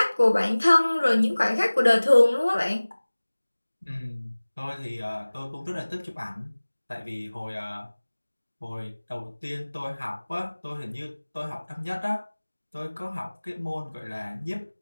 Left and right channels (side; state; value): both; inverted; correlation -1.00